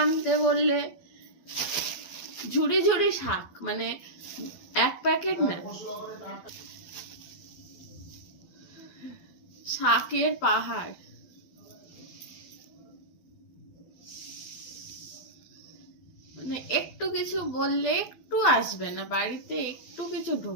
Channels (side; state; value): right; late; 12 ms